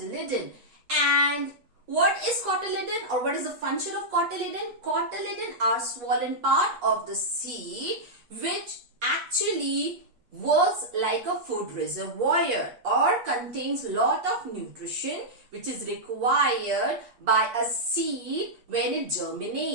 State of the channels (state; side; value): late; left; 8.4 ms